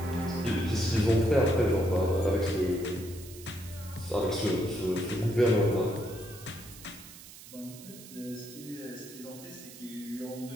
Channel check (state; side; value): noise; right; hiss, 17 dB below the sound